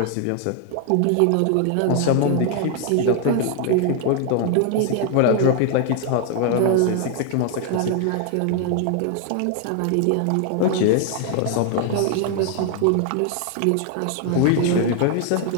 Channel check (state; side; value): different; both; correlation 0.00